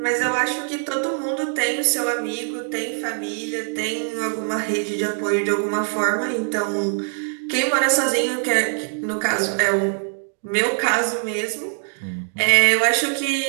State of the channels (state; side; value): silent; left; 64 dB below the other